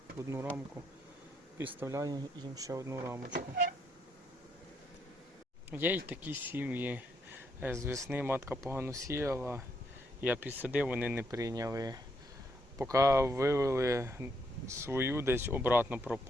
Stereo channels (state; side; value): normal; both; correlation 0.75